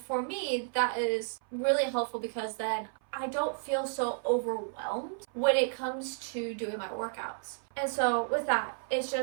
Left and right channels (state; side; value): silent; left; 56 dB below the other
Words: for me, that is really helpful because then I don't feel so overwhelmed when it comes to doing my workouts. And so with that, it's